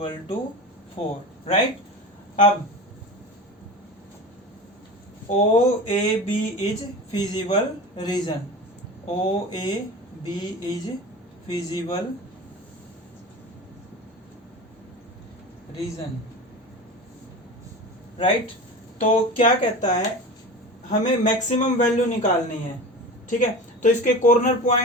to 4, right. अब OAB is feasible region, OAB is feasible region, right. तो क्या कहता है, हमें मैक्सिमम वैल्यू निकालनी है, ठीक है। तो इसके कॉर्नर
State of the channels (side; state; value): both; normal; correlation 0.31